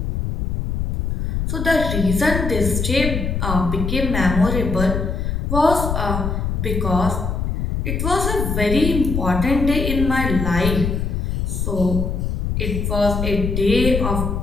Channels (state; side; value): noise; left; rumble, 1 dB below the sound